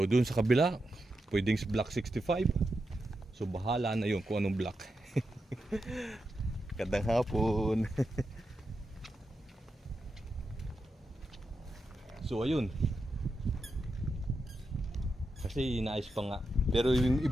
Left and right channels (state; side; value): normal; both; correlation 0.87